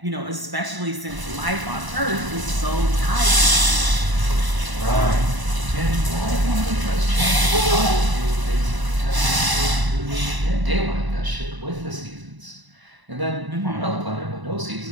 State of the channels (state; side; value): late; left; 1.0 ms